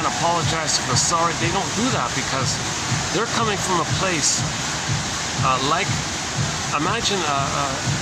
apologize if they're sorry. They don't do that because they're coming from a place like, imagine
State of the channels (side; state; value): both; identical; correlation 1.00